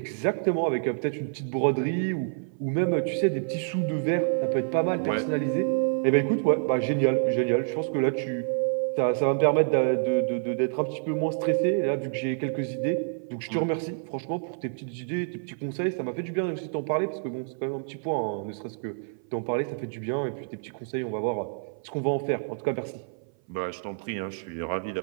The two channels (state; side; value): silent; left; 57 dB below the other